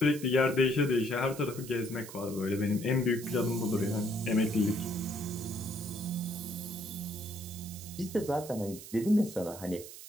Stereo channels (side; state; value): right; noise; hiss, 14 dB below the sound